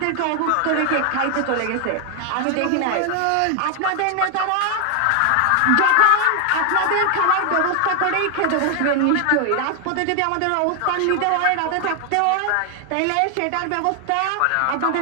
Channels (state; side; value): different; both; correlation 0.00